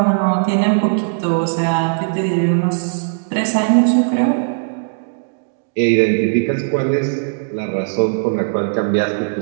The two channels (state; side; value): silent; left; digital silence